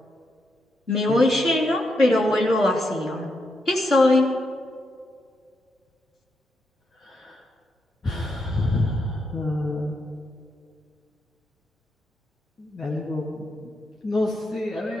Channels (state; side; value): normal; both; correlation 0.82